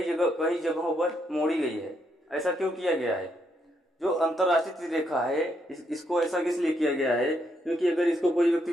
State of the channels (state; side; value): normal; both; correlation 0.76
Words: जगहों पर मोड़ी गई है। ऐसा क्यों किया गया है, जो अंतरराष्ट्रीय तिथि रेखा है इसको ऐसा इसलिए किया गया है क्योंकि अगर इसको कोई व्यक्ति